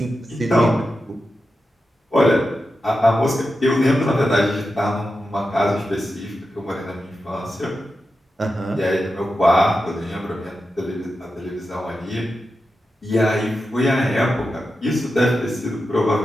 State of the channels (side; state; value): both; normal; correlation 0.90